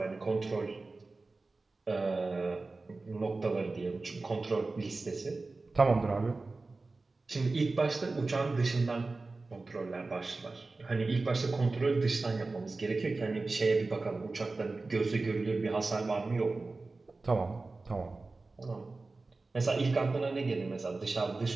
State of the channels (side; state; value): left; quieter; 3.5 dB